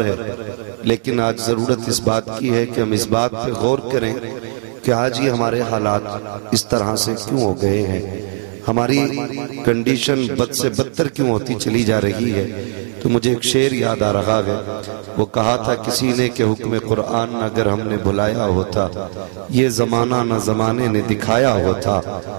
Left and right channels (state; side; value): silent; left; digital silence